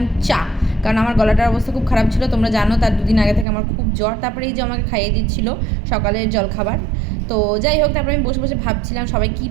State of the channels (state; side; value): drops out; left; at 3.5 s